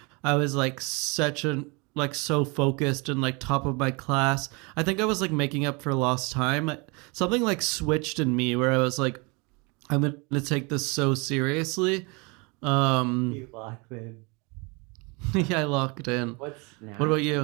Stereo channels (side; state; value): left; quieter; 29.5 dB